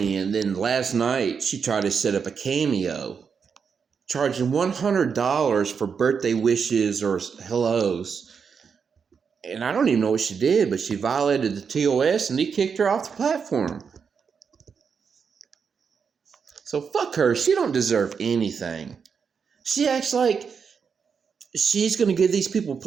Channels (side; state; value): left; quieter; 6.2 dB